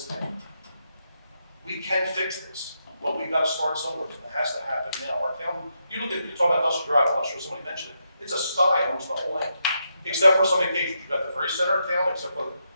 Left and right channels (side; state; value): both; inverted; correlation -0.82